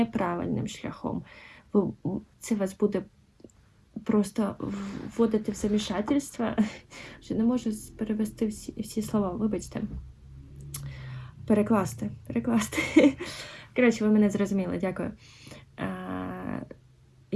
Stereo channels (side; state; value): both; identical; correlation 1.00